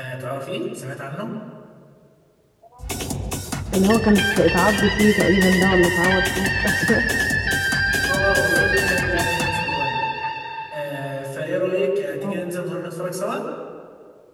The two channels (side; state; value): both; identical; correlation 1.00